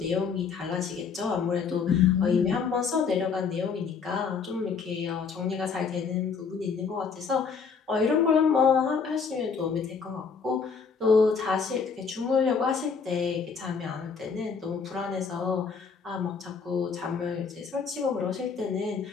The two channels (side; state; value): right; quieter; 5.7 dB